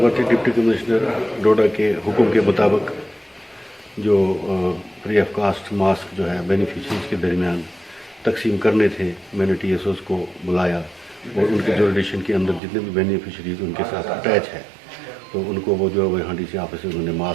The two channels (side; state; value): left; drops out; at 12.6 s